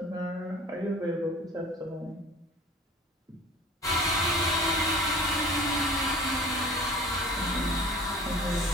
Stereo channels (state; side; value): normal; both; correlation 0.42